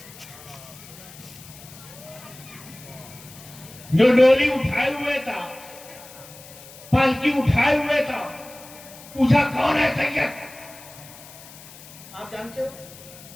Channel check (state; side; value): noise; left; hiss, 18 dB below the sound